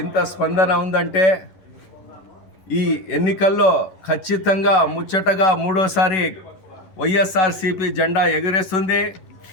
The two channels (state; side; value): late; right; 11 ms